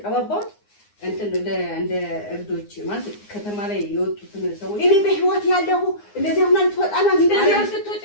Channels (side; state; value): right; late; 9.7 ms